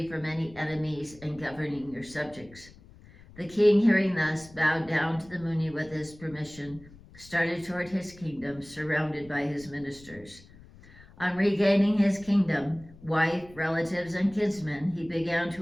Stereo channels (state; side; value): noise; left; rumble, 22 dB below the sound